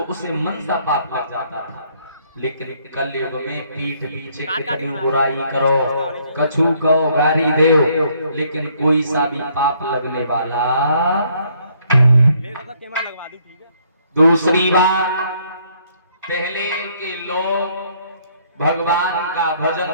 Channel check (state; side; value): inverted; both; correlation -0.66